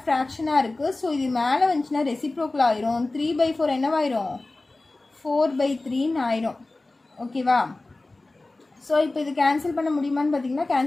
ஃப்ராக்ஷனாக இருக்குது. ஸோ இது மேலே வந்துச்சுன்னா ரெசிப்ரோக்கில் ஆயிரும். 3/4 என்னவாயிரும்? 4/3ன்னு ஆயிரும். ஓகேவா? ஸோ இப்போ இது கேன்சல் பண்ண முடியுமான்னு பார்த்தீங்கன்னா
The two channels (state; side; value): quieter; right; 3.1 dB